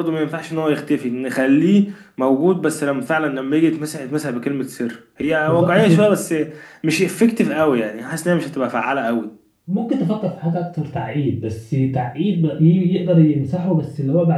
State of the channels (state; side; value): identical; both; correlation 1.00